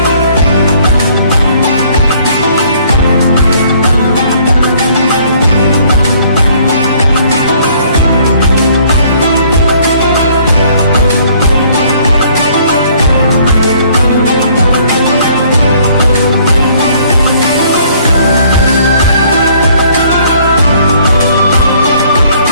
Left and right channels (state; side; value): inverted; both; correlation -0.60